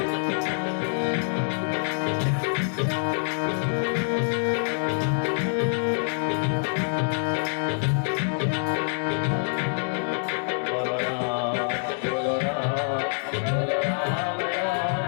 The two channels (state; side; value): silent; right; 61 dB below the other